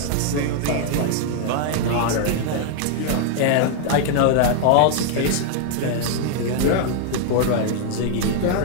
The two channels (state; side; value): different; both; correlation -0.01